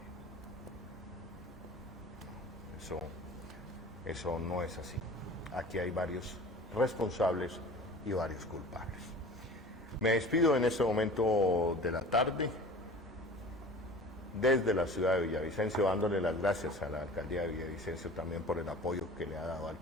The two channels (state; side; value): normal; both; correlation 0.41